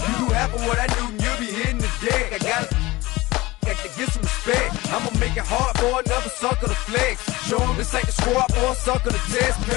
you do half of what I do, you'll be hitting the deck. I got to get some respect. I'ma make it hard for another sucker to flex. Show him this ain't the squad for a sucker to test.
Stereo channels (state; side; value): quieter; right; 20.4 dB